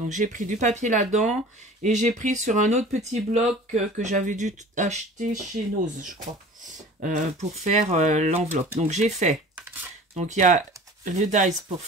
j'ai pris du papier là-dedans et j'ai pris sur un autre petit bloc que j'avais dû acheter chez Nose, je crois, pour faire l'enveloppe. Donc j'ai fait, donc il y a le dies pour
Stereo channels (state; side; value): normal; both; correlation 0.42